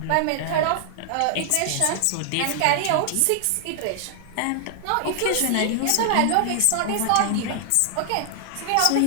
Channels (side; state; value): both; different; correlation 0.00